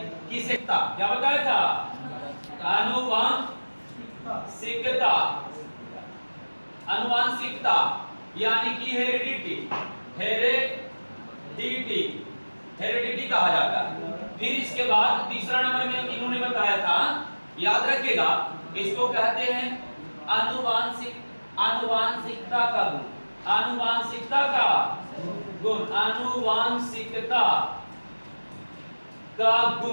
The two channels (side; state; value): both; inverted; correlation -1.00